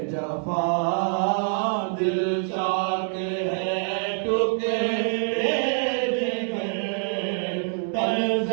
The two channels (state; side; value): silent; left; 62 dB below the other